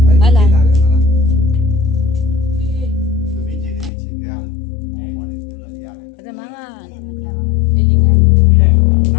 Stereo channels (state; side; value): drops out; right; at 3.9 s